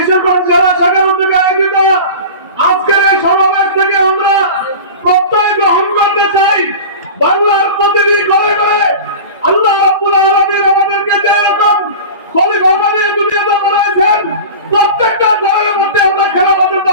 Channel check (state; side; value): inverted; both; correlation -0.33